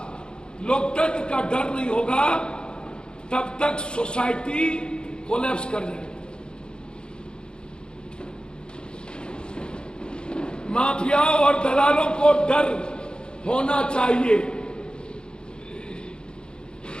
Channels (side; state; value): right; late; 0.050 ms